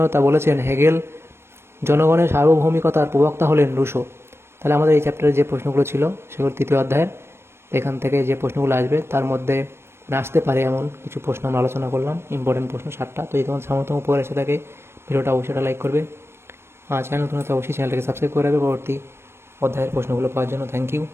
বলেছেন হেগেল। জনগণের সার্বভৌমিকতার প্রবক্তা হলেন রুশো। তাহলে আমাদের এই চ্যাপ্টারে যে প্রশ্নগুলো ছিল সেগুলো তৃতীয় অধ্যায়ের, এখান থেকে যে প্রশ্নগুলো আসবে তার মধ্যে আসতে পারে এমন কিছু প্রশ্ন আমরা আলোচনা করলাম, ইম্পর্টেন্ট প্রশ্ন 7টা। তো এই তোমার সামর্থ্য উপকার এসে থাকে ভিডিওটা অবশ্যই লাইক করবে, চ্যানেল নতুন হলে অবশ্যই চ্যানেলটাকে সাবস্ক্রাইব করে রাখবে পরবর্তী অধ্যায়ের প্রশ্নগুলো পাওয়ার জন্য।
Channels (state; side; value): late; left; 0.12 ms